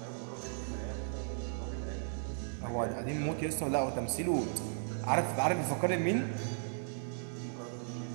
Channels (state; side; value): silent; left; digital silence